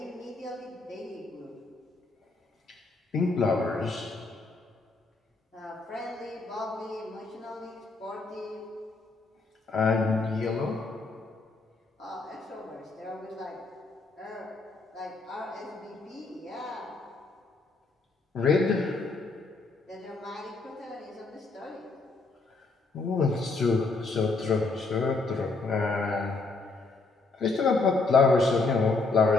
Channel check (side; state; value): right; quieter; 3.7 dB